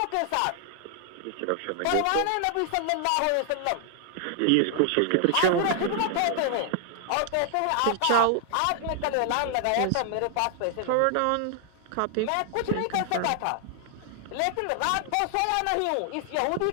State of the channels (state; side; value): different; both; correlation 0.00